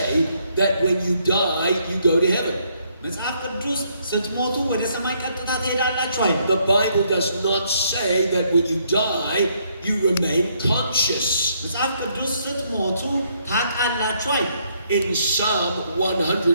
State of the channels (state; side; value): inverted; both; correlation -0.71